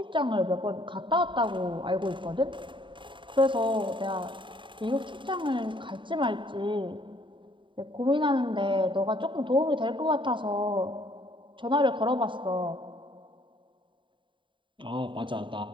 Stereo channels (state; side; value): late; left; 0.24 ms